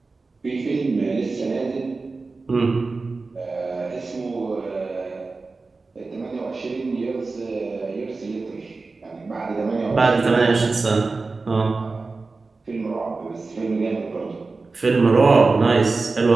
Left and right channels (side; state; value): left; quieter; 3.9 dB